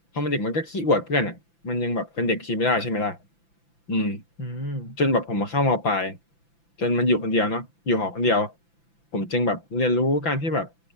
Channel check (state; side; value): late; right; 5.9 ms